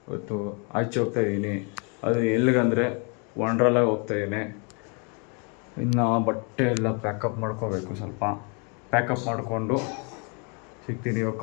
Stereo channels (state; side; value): quieter; right; 35.1 dB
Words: ಇವತ್ತು ಆಚೆ ಹೋಗ್ತಾ ಇದ್ದೀನಿ. ಅದು ಎಲ್ಲಿಗಂದರೆ ವಂಡ್ರಲಾಗಿ ಹೋಗ್ತಾ ಇದ್ದೀನಿ. ಇನ್ನು ಬಟ್ಟೆ ಎಲ್ಲ ಪ್ಯಾಕಪ್ ಮಾಡ್ಕೋಬೇಕು. ಸ್ವಲ್ಪ ಪ್ಯಾಕಪ್ ಮಾಡಿಕೊಂಡು ಸಿಗ್ತೀನಿ. ಇವಾಗ